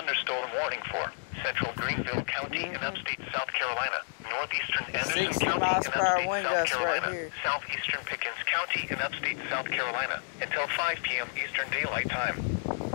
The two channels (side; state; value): right; silent; digital silence